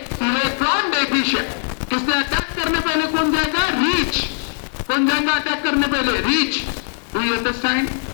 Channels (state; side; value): silent; right; 56 dB below the other